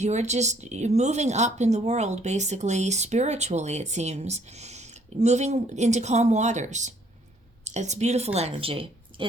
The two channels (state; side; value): normal; both; correlation 0.63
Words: You're moving up in the world, basically, spiritually, it seems. Moving into calm waters. It's beautiful energy.